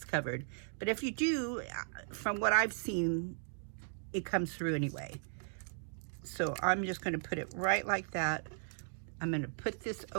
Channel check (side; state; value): left; silent; 53 dB below the other